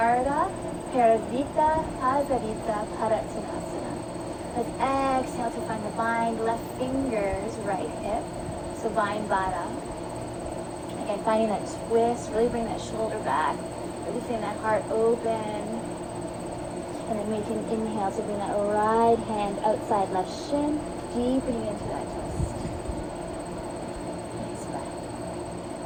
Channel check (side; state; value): both; identical; correlation 1.00